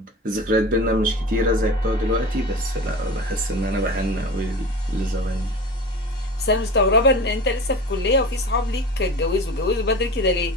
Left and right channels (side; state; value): both; normal; correlation 0.33